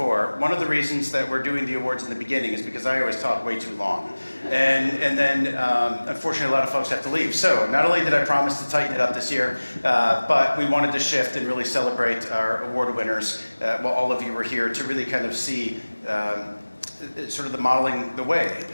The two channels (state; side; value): inverted; both; correlation -1.00